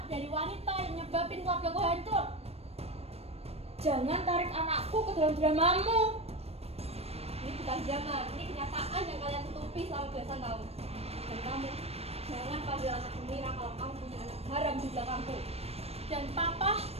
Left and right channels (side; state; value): left; late; 0.29 ms